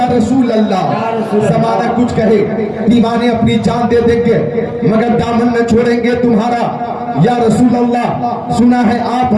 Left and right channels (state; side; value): identical; both; correlation 1.00